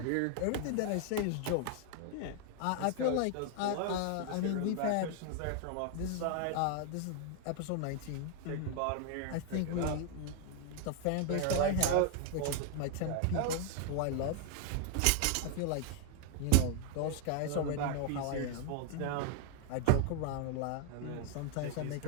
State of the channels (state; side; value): different; both; correlation 0.00